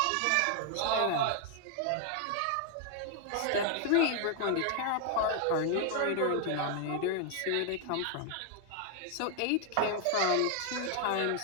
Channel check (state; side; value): different; both; correlation 0.00